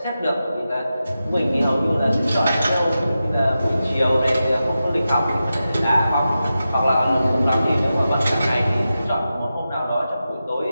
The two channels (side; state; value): both; inverted; correlation -0.91